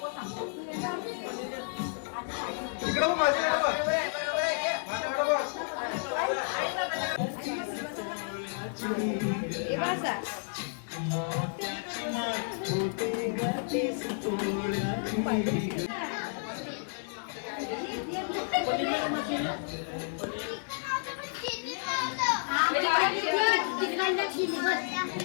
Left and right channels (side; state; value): right; silent; digital silence